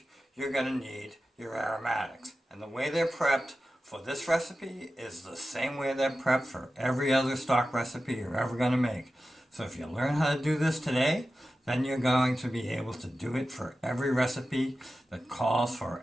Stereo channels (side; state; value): both; normal; correlation 0.93